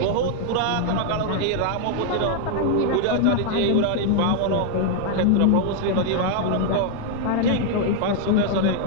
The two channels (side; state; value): both; different; correlation 0.00